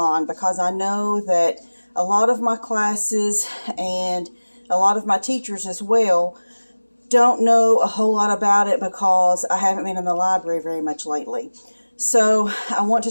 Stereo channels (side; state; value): both; inverted; correlation -1.00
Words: because I know that a lot of my classes and a lot of my teachers as well don't know a whole lot about it because I haven't been in the library very much lately. So I want to